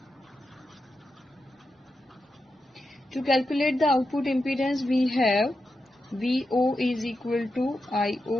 To calculate the output impedance, we have Vo is equal to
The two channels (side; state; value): both; normal; correlation 0.88